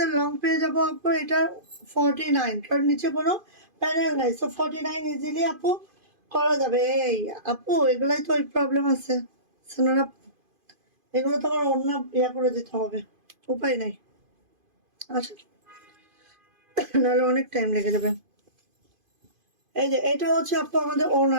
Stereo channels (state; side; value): late; left; 2.5 ms